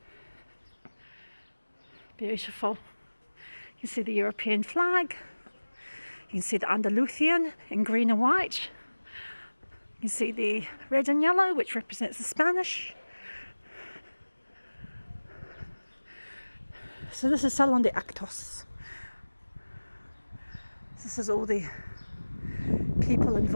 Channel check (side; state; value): both; inverted; correlation -1.00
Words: Beautiful. You can see the European flag. You can see the Andalusian in green and white. You can see the red and yellow, which represents the Spanish. So this is Salon de Actos. This is all the people